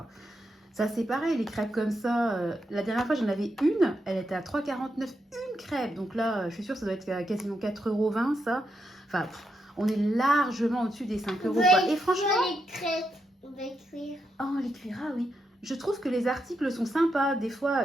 Ça, c'est pareil, les crêpes comme ça. La dernière fois, j'en avais une. Elle était à 3,49 € une crêpe. Donc là, je suis sûre que ça doit être quasiment 4,20 €, ça. Enfin, on est largement au-dessus des 5 €. Quoi. Et franchement... les crêpes, on va cuire. Oh, les cuire, ah oui. Je trouve que les articles sont sympas. Des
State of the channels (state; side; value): normal; both; correlation 0.83